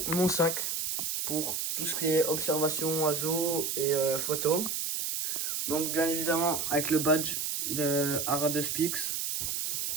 mon sac pour tout ce qui est observation, oiseaux et photos. Donc bien évidemment avec le badge de Aradospix,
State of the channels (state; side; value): noise; right; hiss, 1 dB below the sound